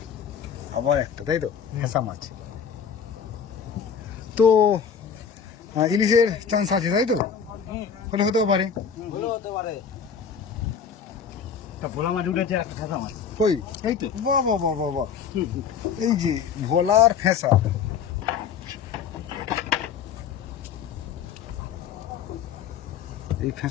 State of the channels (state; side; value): quieter; right; 7.0 dB